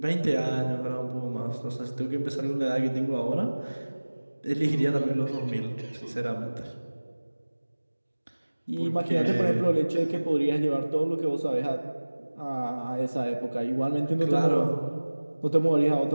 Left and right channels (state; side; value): inverted; both; correlation -1.00